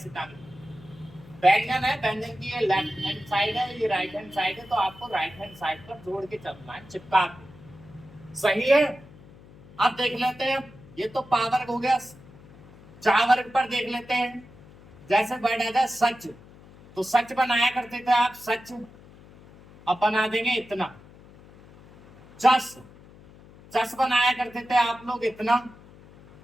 टांगना। व्यंजन है, व्यंजन की ये लेफ्ट हैंड साइड है, ये राइट हैंड साइड है, तो आपको राइट हैंड साइड पर जोड़ के चलना है, चिपका के। सही है। अब देख लेते हैं, ये तो पावर हो गया। चा वर्ग पर देख लेते हैं, जैसे वर्ड आ जाए सच, तो सच बनाया करते थे आप, सच। अब बना देंगे इतना। चस, चस बनाया करते थे आप लोग इतना,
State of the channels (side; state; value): left; noise; hum, 22 dB below the sound